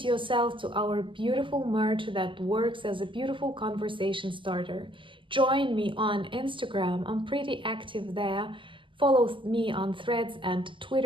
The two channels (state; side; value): late; left; 0.25 ms